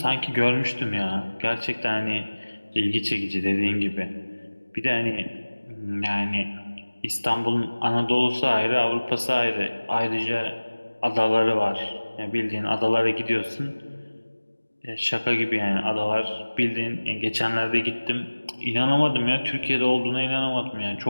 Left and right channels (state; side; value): inverted; both; correlation -1.00